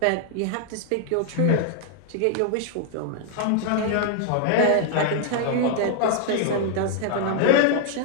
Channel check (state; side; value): different; both; correlation 0.00